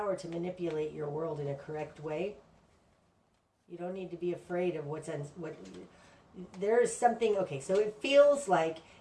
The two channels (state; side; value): identical; both; correlation 1.00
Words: to manipulate your world in a correct way. You don't need to be afraid of what there is something. Okay, so it feels like